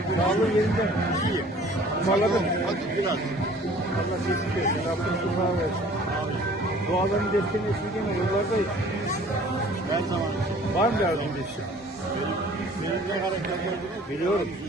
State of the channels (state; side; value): normal; both; correlation 0.51